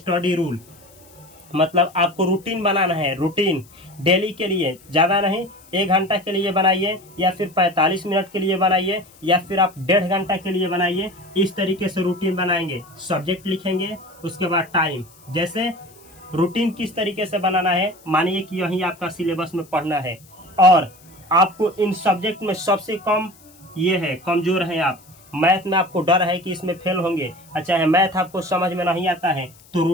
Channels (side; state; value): left; noise; hiss, 26 dB below the sound